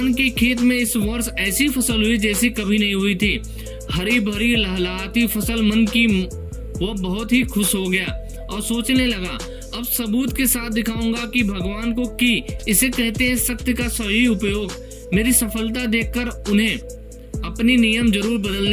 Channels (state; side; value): identical; both; correlation 1.00